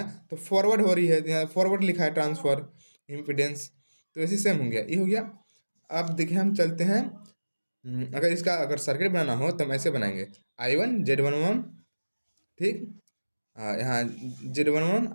तो फॉरवर्ड हो रही है, यहाँ फॉरवर्ड लिखा है ट्रांसफर इम्पीडेंस, तो ऐसे सेम हो गया, ये हो गया। अब देखिए हम चलते हैं, अगर इसका अगर सर्किट बनाना हो तो हम ऐसे बनाएंगे, I one Z one one, ठीक, यहाँ Z one one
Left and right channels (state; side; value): inverted; both; correlation -1.00